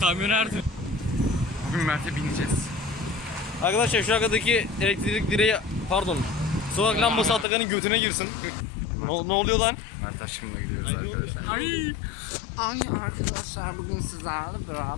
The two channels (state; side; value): drops out; right; at 7.5 s